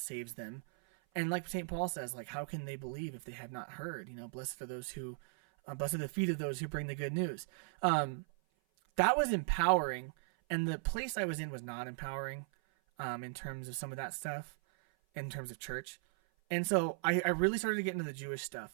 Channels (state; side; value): silent; left; 53 dB below the other